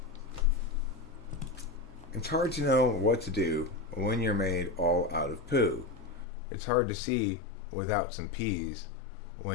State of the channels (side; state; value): right; drops out; at 6.2 s